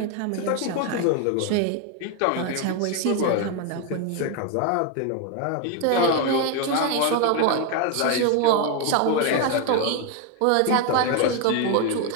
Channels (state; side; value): different; both; correlation 0.01